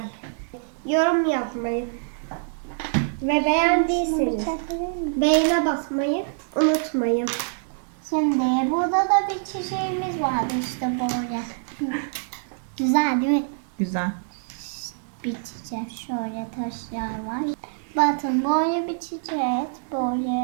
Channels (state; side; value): silent; left; digital silence